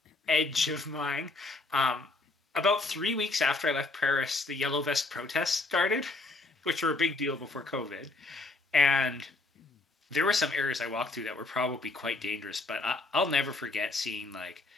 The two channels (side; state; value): right; quieter; 3.2 dB